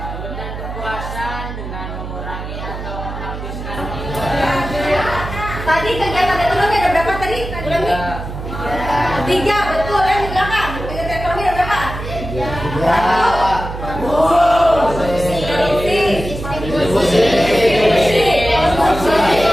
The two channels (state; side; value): noise; right; hum, 8 dB below the sound